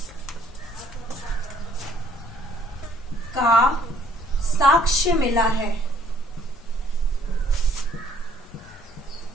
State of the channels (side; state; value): both; normal; correlation 0.62